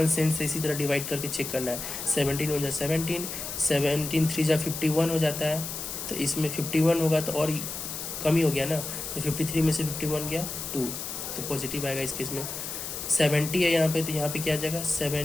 सेंस से इसी तरह डिवाइड करके चेक करना है। 17 1 जा 17, 17 3 जा 51 हो जाता है, तो इसमें 51 होगा तो और कम ही हो गया ना, तो 53 में से 51 गया 2, तो पॉजिटिव आएगा इस केस में। 70 है यहाँ पे, तो यहाँ पे क्या आ जाएगा,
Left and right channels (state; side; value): noise; left; hiss, 6 dB below the sound